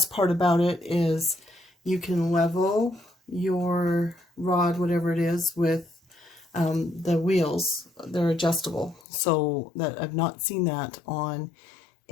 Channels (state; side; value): drops out; right; at 9.1 s